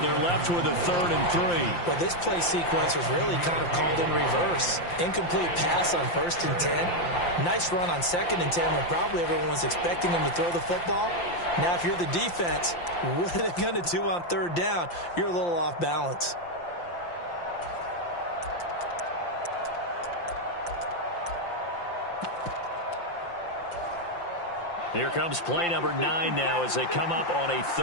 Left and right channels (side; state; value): right; late; 5.8 ms